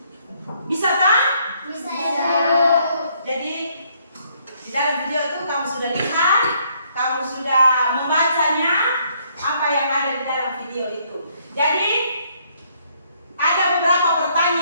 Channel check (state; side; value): inverted; both; correlation -0.68